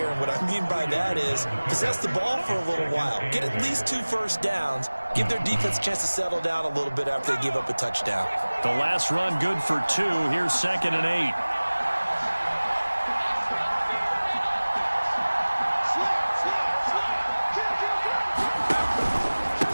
And what I mean by that is possess the ball for a little while. Get at least 2 first downs. Give their defense a chance to settle down a little bit after they give up a touchdown. The last run good for 2. Here's 2nd and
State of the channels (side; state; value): both; inverted; correlation -1.00